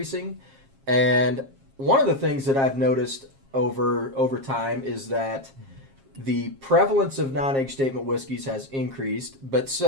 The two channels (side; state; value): left; late; 7.4 ms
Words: And one of the things that I've noticed over time is that the prevalence of non-age statement whiskeys has increased, but